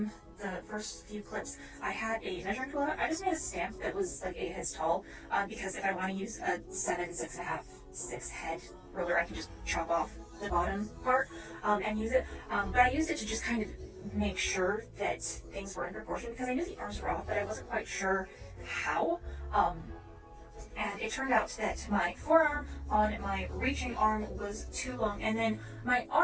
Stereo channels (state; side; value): identical; both; correlation 1.00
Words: the first few clips, I had a measuring tool out. I just made a stamp that was like 8 heads tall because if I want to use a 7, 6.5, 6 head ruler, I can just chop off the bottom part and use it. But I used it to just kind of make sure that things were in proportion because I knew the arms were off, but I wasn't quite sure how. And it turned out that my forearm on my reaching arm was too long, and then my